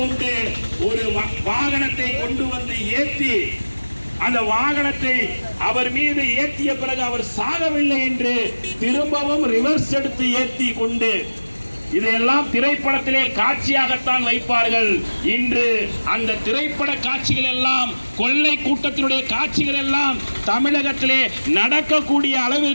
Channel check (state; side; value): inverted; both; correlation -1.00